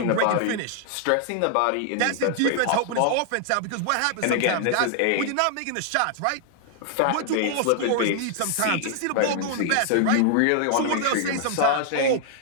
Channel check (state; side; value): different; both; correlation 0.00